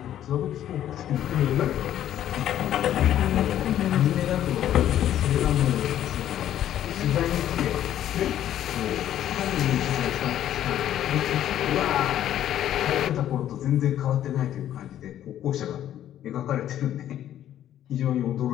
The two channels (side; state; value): right; quieter; 11.5 dB